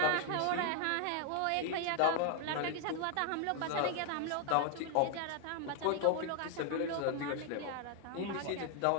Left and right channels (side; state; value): both; different; correlation 0.00